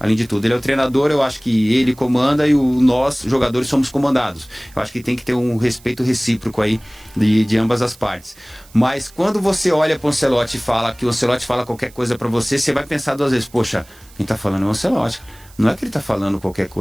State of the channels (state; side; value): noise; right; hiss, 25 dB below the sound